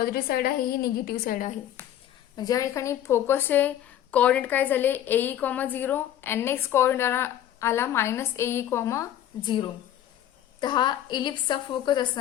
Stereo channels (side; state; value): right; quieter; 11.4 dB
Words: साइड आहे, ही निगेटिव्ह साइड आहे. म्हणजे या ठिकाणी फोकसचे कोऑर्डिनेट काय झाले एई, 0 आणि नेक्स्ट कोऑर्डिनेट आला -एई, 0. तर हा इलिप्सचा फोकस